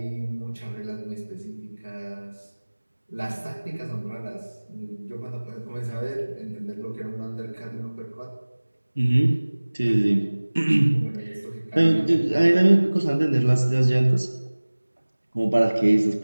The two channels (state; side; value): inverted; both; correlation -1.00